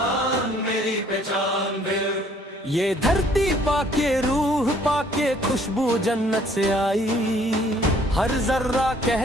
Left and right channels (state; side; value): normal; both; correlation 0.60